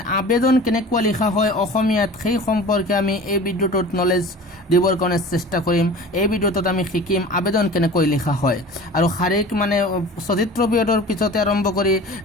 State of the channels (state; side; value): normal; both; correlation 0.39